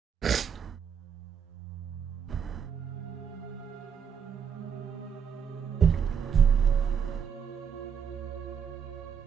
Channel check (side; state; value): left; quieter; 7.2 dB